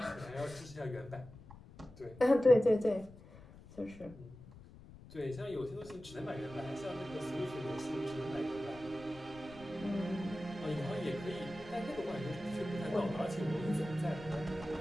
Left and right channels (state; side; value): noise; left; rumble, 19 dB below the sound